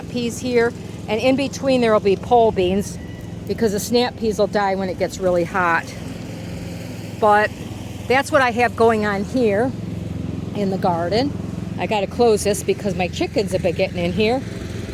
peas here, and in between there will be pole beans because the snap peas will die when it gets really hot. But that's what I have going on here in the garden. I got to close this because my chickens have been getting in here,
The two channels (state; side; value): identical; both; correlation 1.00